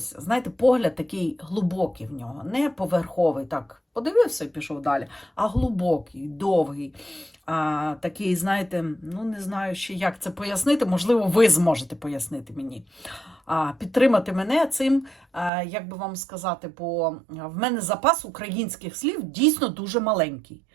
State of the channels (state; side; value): drops out; left; at 15.5 s